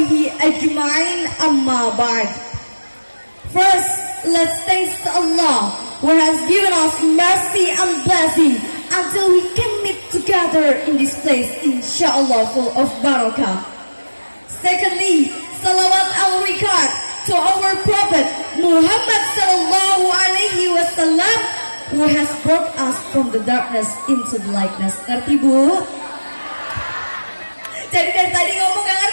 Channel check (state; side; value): inverted; both; correlation -1.00